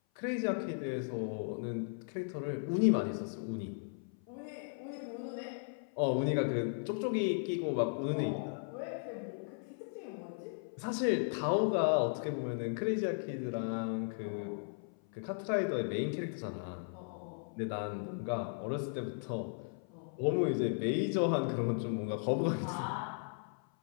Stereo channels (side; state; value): right; silent; 54 dB below the other